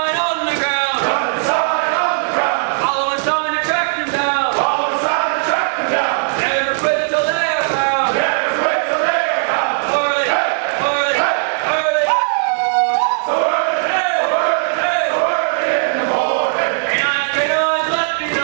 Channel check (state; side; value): silent; left; digital silence